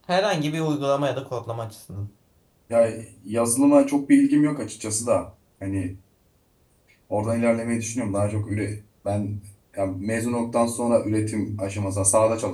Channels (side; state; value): both; identical; correlation 1.00